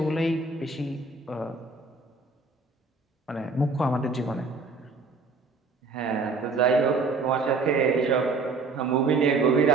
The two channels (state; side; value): quieter; left; 3.9 dB